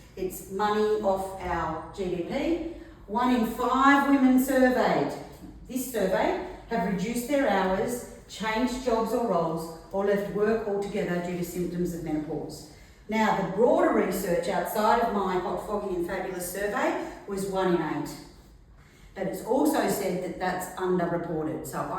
it's money off our GDP. 1 in 5 women surveyed, this survey, have reduced their hours, changed jobs or roles, or left work altogether due to symptoms of menopause. Now, the broader research outside of my Hot, Foggy and Fabulous survey was 1 in 8. But it's also said that that's underreported. So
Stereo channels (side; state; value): both; identical; correlation 1.00